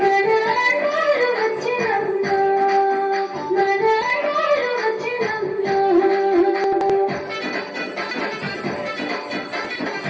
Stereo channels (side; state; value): both; identical; correlation 1.00